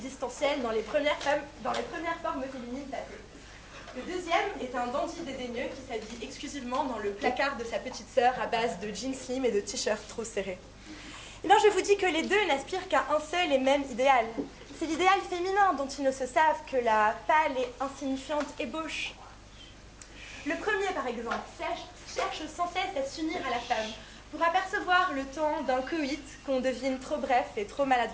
dans les premières formes féminines passées. Le deuxième est un dandy dédaigneux qui s'habille exclusivement dans le placard de sa petite sœur à base de jeans slim et de t-shirts trop serrés. Eh bien, je vous dis que les deux n'aspirent qu'à un seul et même idéal, C'est l'idéal féminin dont ils ne se savent que la pâle et insignifiante ébauche. Le premier, par exemple, cherche sans cesse à s'unir à la femme pour apercevoir le temps d'un coït qu'on devine trop bref et trop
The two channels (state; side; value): identical; both; correlation 1.00